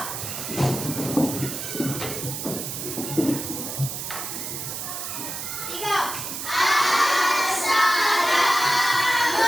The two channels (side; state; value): right; noise; hiss, 5 dB below the sound